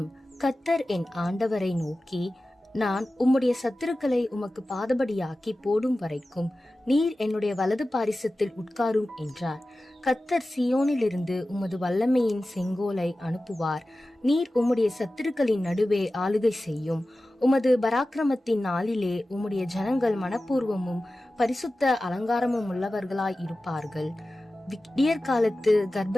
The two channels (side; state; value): both; normal; correlation 0.95